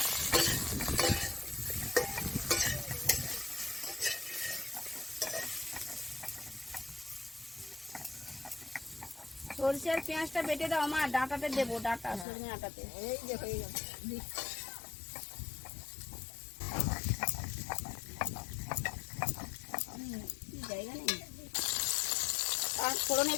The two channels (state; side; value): drops out; right; at 12.2 s